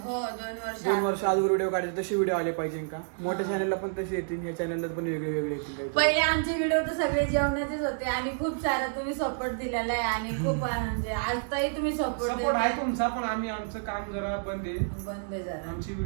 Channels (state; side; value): silent; left; digital silence